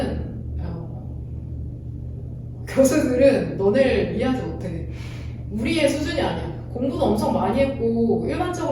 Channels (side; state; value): both; identical; correlation 1.00